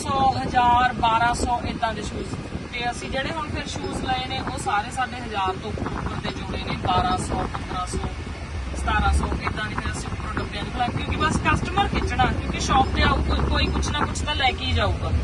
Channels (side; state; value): both; identical; correlation 1.00